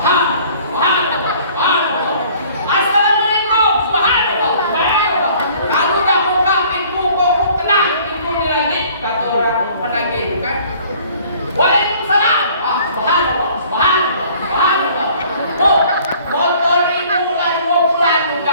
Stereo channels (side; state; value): both; inverted; correlation -0.54